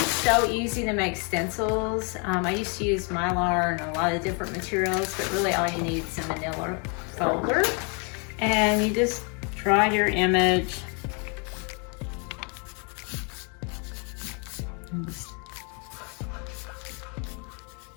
so easy to make stencils. I used to use Mylar and a lot of different materials, but really all you need is a manila folder. And you just draw your image.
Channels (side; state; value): right; quieter; 35.5 dB